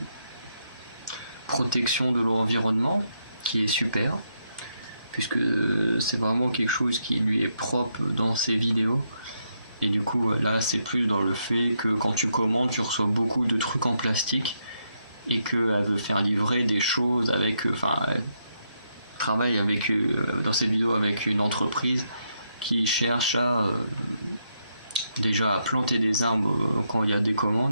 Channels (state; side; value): inverted; both; correlation -0.79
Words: protection de l'environnement qui est super, puisque c'est vraiment quelque chose qui lui est propre dans ses vidéos. Et du coup, là, c'est plus dans le fait que quand tu commandes, tu reçois beaucoup de trucs en plastique et qu'elle veut faire livrer des choses avec... Enfin, elle travaille avec, dans cette vidéo avec une entreprise qui cherche à... déjà à planter des arbres quand il y a des